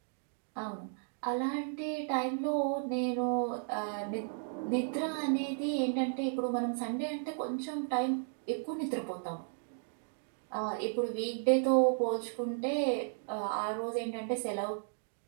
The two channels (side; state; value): left; silent; digital silence